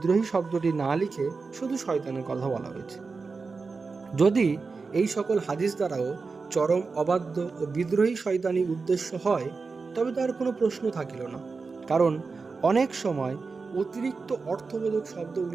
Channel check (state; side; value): quieter; left; 4.4 dB